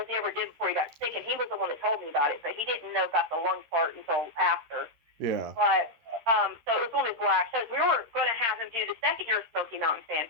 he ever did before he got sick, and he was the one that told me about it, but he didn't know about the lung part until after. Yeah. But, so it was one of his last shows. We were going to have him do the second year of Smoky Mountain Fan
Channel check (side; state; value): left; late; 13 ms